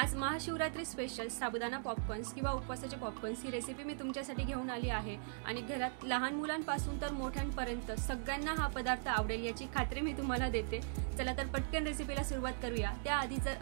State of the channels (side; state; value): left; silent; digital silence